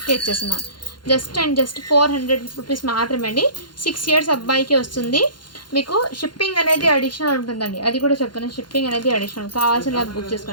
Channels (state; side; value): late; right; 0.71 ms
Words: ఇచ్చేస్తున్నాను. జస్ట్ 400 రూపీస్ మాత్రమే అండి. 6 years అబ్బాయికి వస్తుంది. మీకు షిప్పింగ్ అనేది అడిషనల్ ఉంటుందండి. అది కూడా చెప్తాను. షిప్పింగ్ అనేది అడిషనల్. కావాల్సిన బుక్